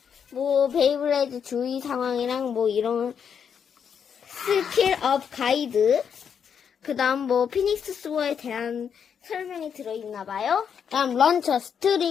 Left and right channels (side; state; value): right; quieter; 7.4 dB